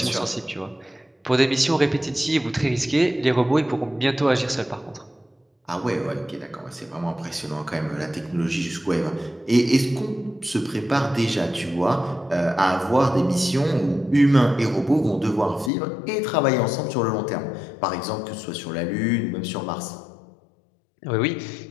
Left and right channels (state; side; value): drops out; right; at 15.7 s